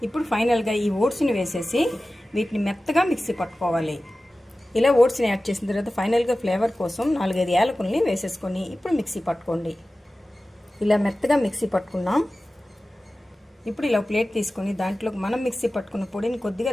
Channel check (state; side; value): normal; both; correlation 0.96